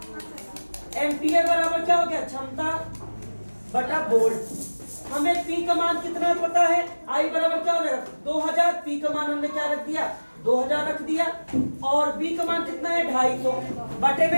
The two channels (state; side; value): inverted; both; correlation -1.00